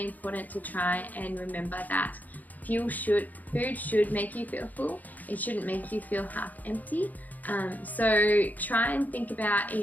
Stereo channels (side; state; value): right; late; 0.081 ms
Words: important to try and remember that food should make you feel full. It shouldn't make you feel half empty. So try and think about